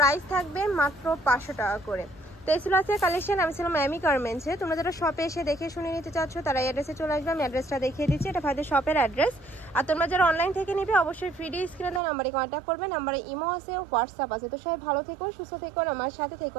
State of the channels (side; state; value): left; drops out; at 12.0 s